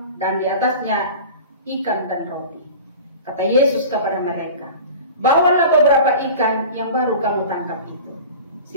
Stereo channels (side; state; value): both; inverted; correlation -0.37